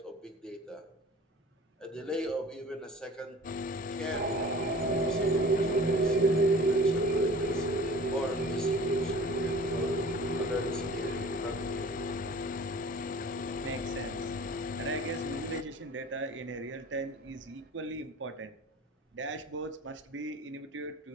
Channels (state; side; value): normal; both; correlation 0.44